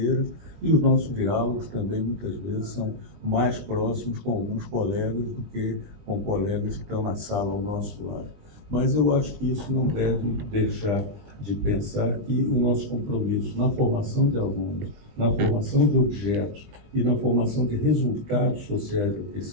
e os nossos diálogos também, muitas vezes, são mais próximos com alguns colegas do que com colegas que estão na sala ao nosso lado. Mas eu acho que isso não deve deixar de pensar que o nosso compromisso na formação de alunos, na formação de objetos e na formação de resultados sociais da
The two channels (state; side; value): late; left; 20 ms